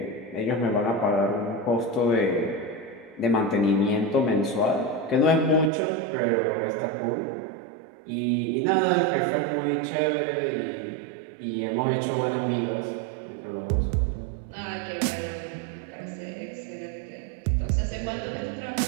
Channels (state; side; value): drops out; left; at 5.7 s